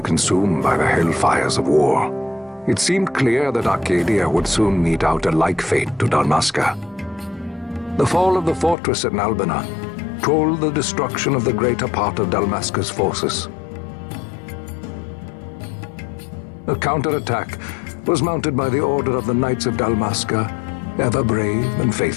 consumed by the hellfires of war, it seemed clear that Archadia would soon mete out a like fate to Dalmasca. The fall of the fortress at Nalbina told the destruction of the greater part of Dalmasca's forces. A counterattack was mounted by the order of the Knights of Dalmasca, ever brave and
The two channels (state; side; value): drops out; right; at 8.8 s